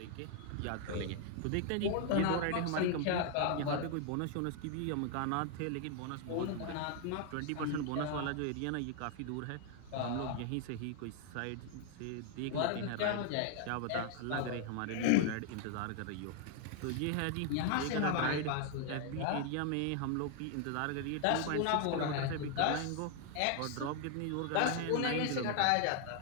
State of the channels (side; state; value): both; different; correlation 0.00